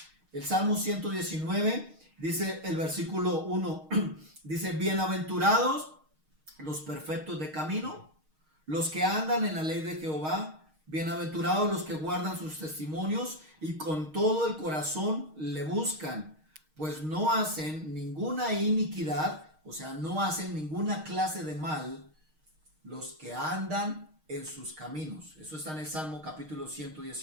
El Salmo 119, Dice el versículo 1, dice, bienaventurados los perfectos de camino, los que andan en la ley de Jehová, bienaventurados los que guardan sus testimonios y con todo el corazón le buscan, pues no hacen ninguna iniquidad, o sea, no hacen ninguna clase de mal los que andan en sus caminos. Eso está en el Salmo capítulo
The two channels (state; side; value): late; left; 6.4 ms